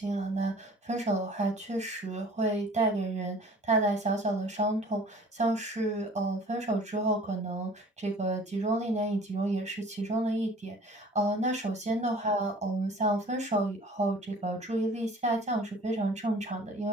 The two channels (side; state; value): both; normal; correlation 0.48